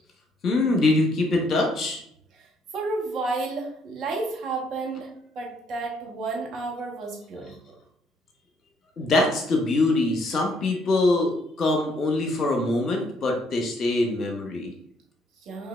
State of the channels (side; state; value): both; normal; correlation 0.69